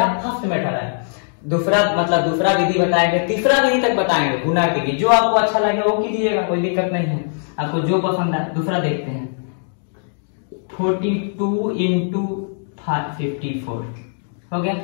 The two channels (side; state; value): right; silent; digital silence